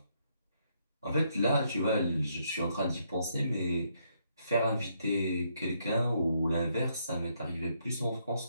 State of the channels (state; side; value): inverted; both; correlation -0.74